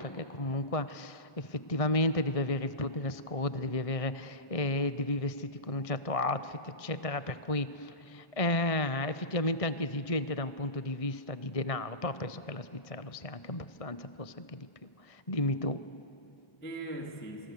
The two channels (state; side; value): late; right; 1.6 ms